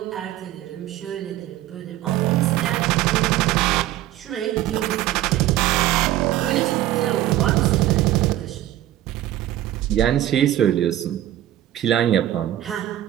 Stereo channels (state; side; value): quieter; left; 13.6 dB